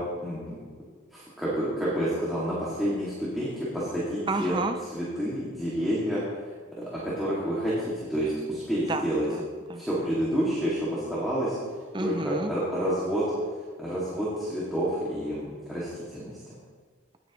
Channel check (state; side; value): normal; both; correlation 0.56